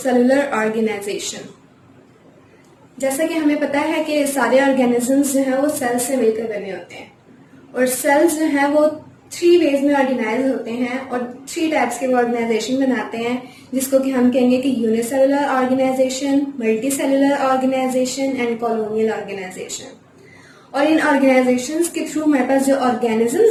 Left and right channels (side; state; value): both; identical; correlation 1.00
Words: organization. जैसा कि हमें पता है कि सारे ऑर्गेनिजम्स जो हैं वो सेल से मिलकर बने होते हैं और सेल्स जो हैं वो 3 वेज में ऑर्गेनाइज होते हैं और 3 टाइप्स के वो ऑर्गेनाइजेशन बनाते हैं, जिसको कि हम कहेंगे कि unicellular organisation, multi cellular organisation and colonial organisation. और इन ऑर्गेनाइजेशंस के थ्रू हमारे पास जो